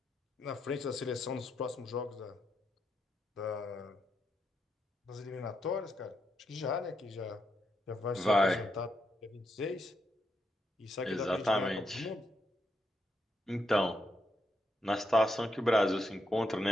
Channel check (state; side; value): normal; both; correlation 0.81